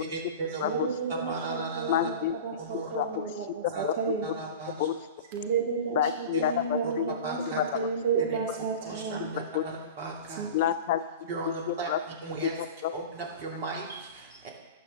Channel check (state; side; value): inverted; both; correlation -0.32